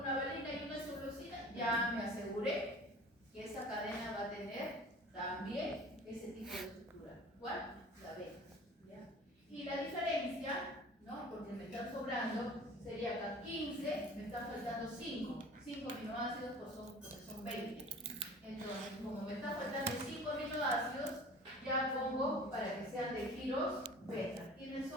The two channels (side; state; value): both; normal; correlation 0.43